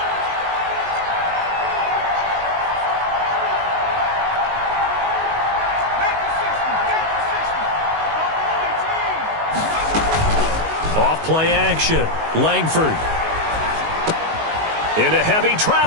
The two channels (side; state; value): left; late; 19 ms